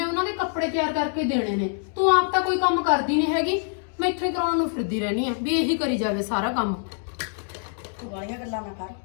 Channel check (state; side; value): silent; right; 55 dB below the other